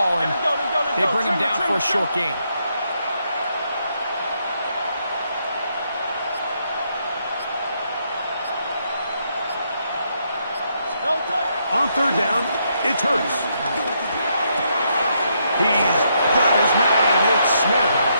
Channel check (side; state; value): both; inverted; correlation -0.76